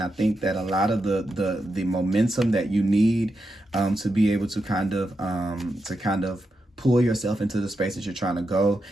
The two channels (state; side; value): normal; both; correlation 0.86